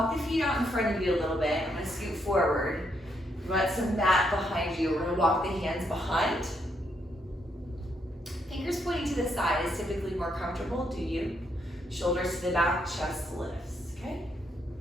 the feet out in front of you a little bit. I'm going to scoot forward. You want some mat behind you. We're going to walk the hands behind. Fingers pointing to the side is typically more comfortable. Do you? Shoulders to the back, chest lifts. Okay?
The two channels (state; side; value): normal; both; correlation 0.76